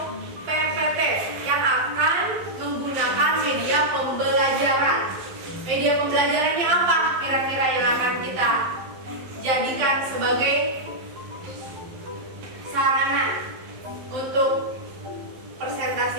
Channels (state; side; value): late; left; 11 ms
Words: PPT yang akan menggunakan media pembelajaran. Media pembelajarannya apa kira-kira yang akan kita jadikan sebagai sarana untuk presentasi